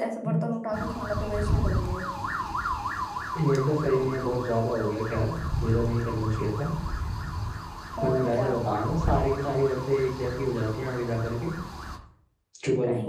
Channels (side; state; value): both; identical; correlation 1.00